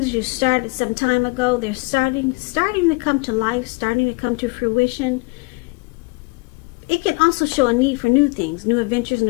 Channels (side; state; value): right; quieter; 29.5 dB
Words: you started some time ago, they're starting to come to life, starting to come to fruition. It can also show a need for new things, new adventures,